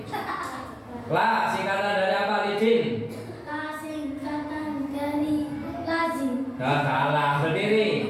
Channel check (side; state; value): both; identical; correlation 1.00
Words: La singkatan dari apa? Lidin. La singkatan dari lazim. Nah, salah, berdiri.